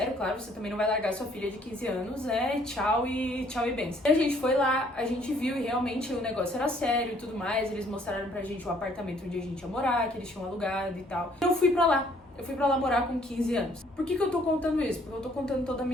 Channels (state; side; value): normal; both; correlation 0.63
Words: claro, você também não vai largar sua filha de 15 anos, tchau e benção. E a gente foi lá, a gente viu e realmente o negócio era sério e tudo mais, eles mostraram pra gente o apartamento onde a gente ia morar, que eles tinham alugado e tal. Eu fui pra lá morar com 15 anos. Por que eu tô contando isso? Porque eu tô contando toda a